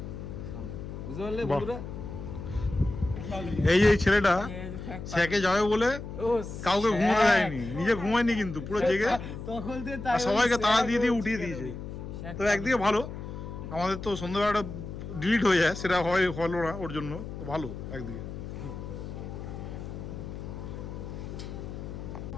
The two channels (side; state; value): left; noise; hum, 9 dB below the sound